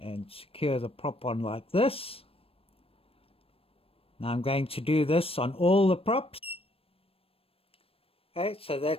secure the prop on like this. Now I'm going to do this on all the props. Okay, so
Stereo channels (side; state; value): right; late; 0.28 ms